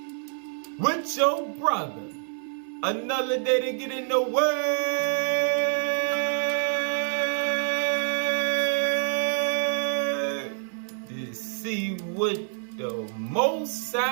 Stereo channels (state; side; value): silent; left; 60 dB below the other